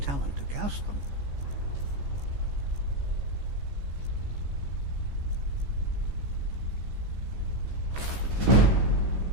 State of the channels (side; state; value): left; late; 14 ms